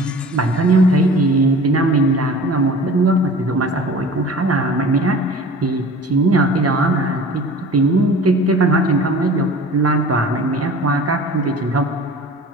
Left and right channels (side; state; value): both; normal; correlation 0.42